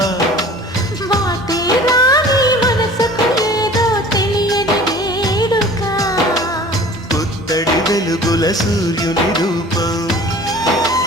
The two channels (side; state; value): both; normal; correlation 0.45